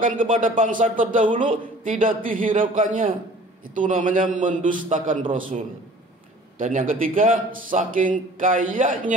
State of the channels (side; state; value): both; normal; correlation 0.48